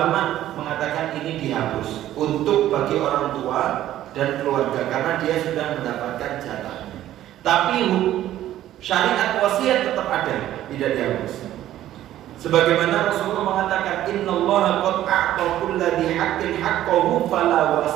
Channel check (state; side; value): quieter; left; 13.0 dB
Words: mengatakan ini dihapus untuk bagi orang tua dan keluarga karena dia sudah mendapatkan jatahnya. Tapi syariat wasiat tetap ada, tidak dihapus. Sebagaimana Rasulullah mengatakan, innallaha qad a'ta kulli haqqin haqqahu fala